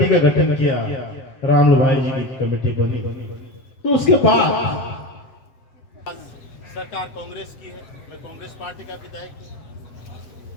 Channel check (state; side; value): late; right; 8.0 ms